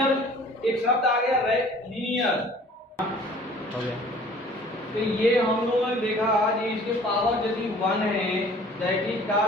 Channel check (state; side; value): normal; both; correlation 0.50